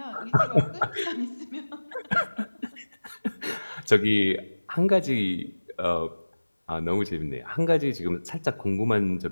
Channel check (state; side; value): inverted; both; correlation -1.00